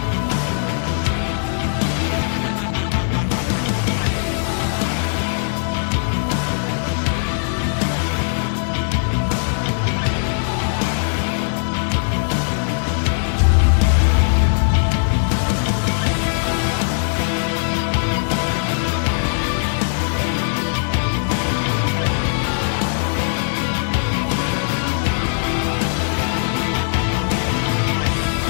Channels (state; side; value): silent; right; 66 dB below the other